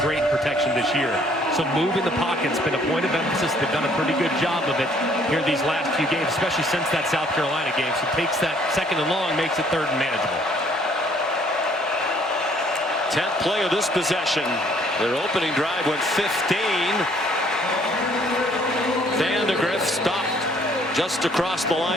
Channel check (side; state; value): both; normal; correlation 0.62